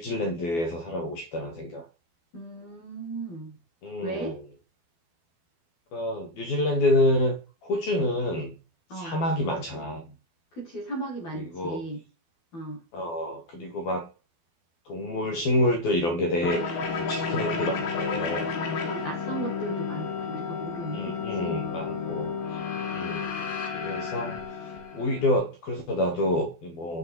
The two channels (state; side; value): late; right; 12 ms